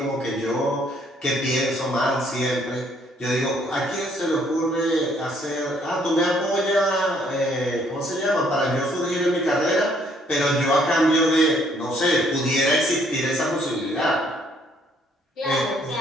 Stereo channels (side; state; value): both; normal; correlation 0.65